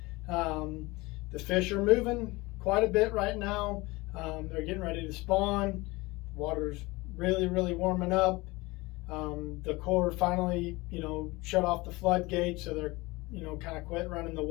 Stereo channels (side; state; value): right; quieter; 22.6 dB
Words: The fish are moving quite a bit right now. They're getting ready to spawn. Water's really warming up. The Corps finally, shut off the floodgates, so they're, kind of quit running the